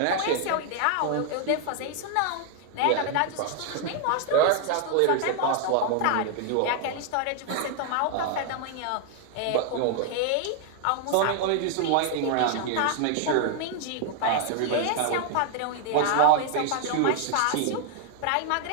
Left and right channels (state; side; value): different; both; correlation 0.00